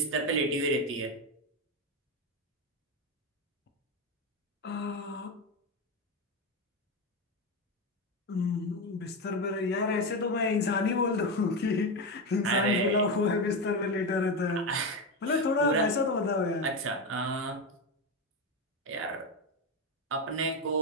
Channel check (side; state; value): both; normal; correlation 0.14